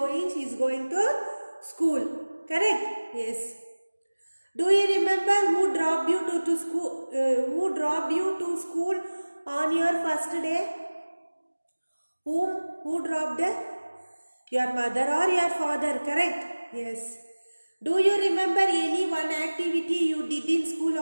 She is going to school, correct? Yes. Do you remember who dropped you to school? Who dropped you to school on your first day? Who dropped? Your mother or your father, correct? Yes. Do you remember any one activity you did in school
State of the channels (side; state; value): both; inverted; correlation -1.00